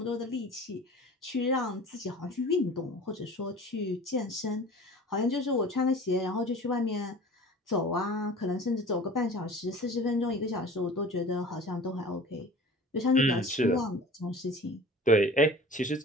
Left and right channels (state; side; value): normal; both; correlation 0.42